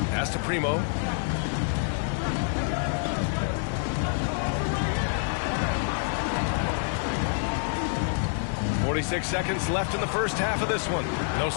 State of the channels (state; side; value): silent; right; 57 dB below the other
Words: Pass to Primo. 46 seconds left in the first half of this one. No,